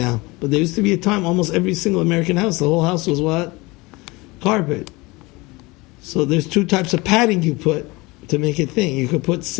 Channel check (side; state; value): right; quieter; 23.4 dB